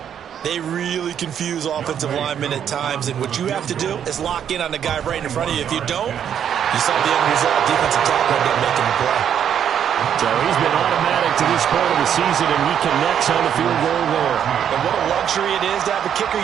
they really confuse offensive linemen at times, and what you have to do is lock in on the guy right in front of you. If you don't, you saw the end result. Defensive tackle ended up making the play. So he's been automatic to this part of the season, and he connects on the field goal there. And what a luxury it is to have a kicker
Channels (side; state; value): left; quieter; 9.0 dB